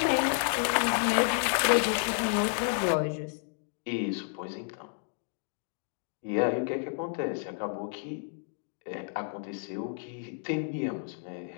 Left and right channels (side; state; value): right; silent; 55 dB below the other